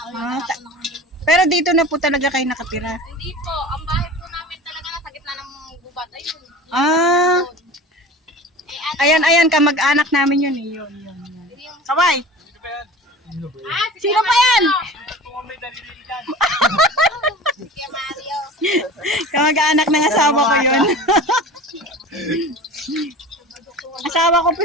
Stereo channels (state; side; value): normal; both; correlation 0.37